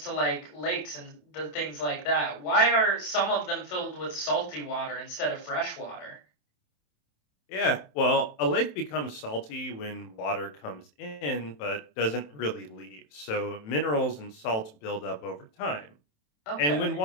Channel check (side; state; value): right; late; 27 ms